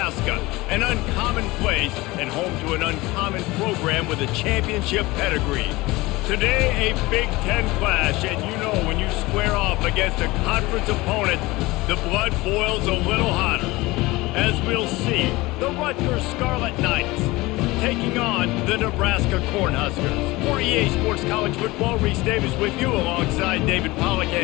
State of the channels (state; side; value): quieter; right; 21.0 dB